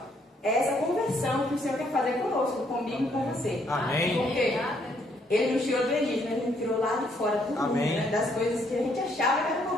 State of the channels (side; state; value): both; normal; correlation 0.69